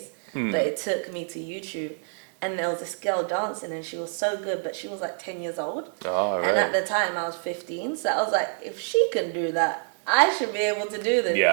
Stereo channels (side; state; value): left; silent; digital silence